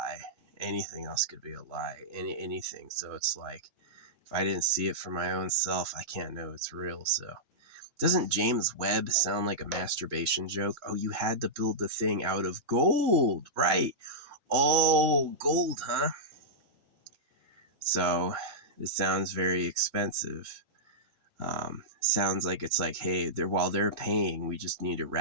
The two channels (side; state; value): left; late; 3.7 ms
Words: Anything else could be a lie. Anything. So it's like, if I didn't see it for my own self, I can't know it's real. So doesn't James Webb sound like a masturbation joke? Oh, you had to build the thing out of gold, right? Oh, gold, huh? So it sounds very expensive. Sounds like it's like, hey, while they're paying, we just need to